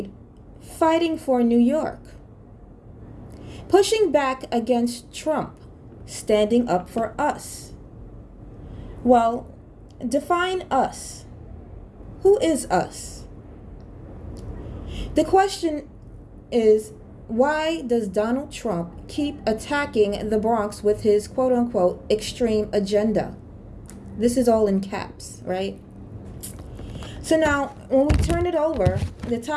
fighting for New York, pushing back against Trump, standing up for us. Well, define us. Who is us? The question is, why does Donald Trump keep attacking the Bronx with his quote-unquote extreme agenda? This is all in caps, right? So now, when we turn it over, the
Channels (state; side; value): identical; both; correlation 1.00